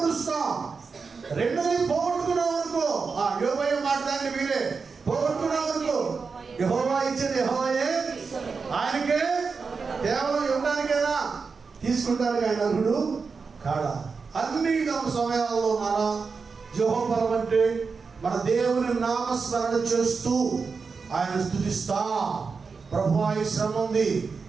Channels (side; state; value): left; quieter; 5.0 dB